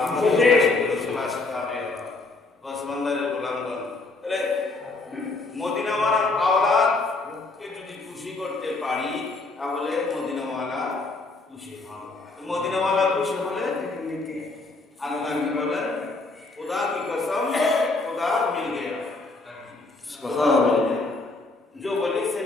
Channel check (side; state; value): right; quieter; 3.4 dB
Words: আমাদের রাসূলুল্লাহ সাল্লাল্লাহু ওসমানদের গোলামগণ। তাহলে মদিনাওয়ালার আওলাদকে যদি খুশি করতে পারি তাহলে মদিনাওয়ালা খুশি হন। মদিনাওয়ালা খুশি হলে আল্লাহ কি বলেন? खुदा की कसम खुदा मिल गया। जो वली से